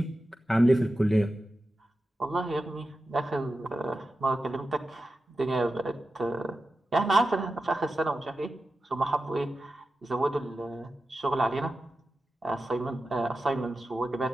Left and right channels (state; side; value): normal; both; correlation 0.92